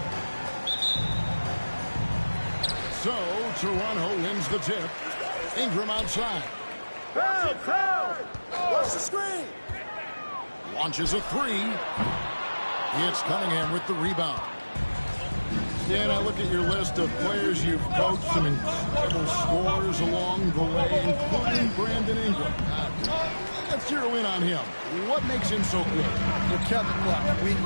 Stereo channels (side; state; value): both; inverted; correlation -1.00